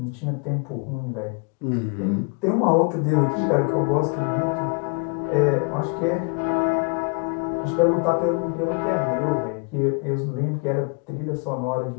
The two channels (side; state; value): right; quieter; 35.5 dB